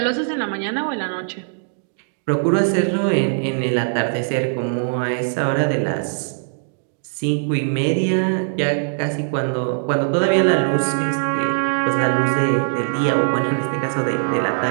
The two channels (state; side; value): silent; left; digital silence